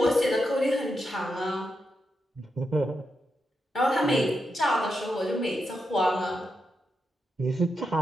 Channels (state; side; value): normal; both; correlation 0.85